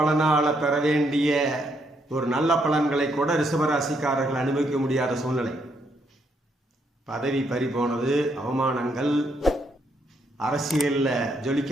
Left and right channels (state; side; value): normal; both; correlation 0.74